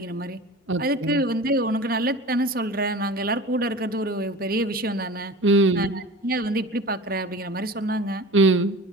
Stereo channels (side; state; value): both; normal; correlation 0.36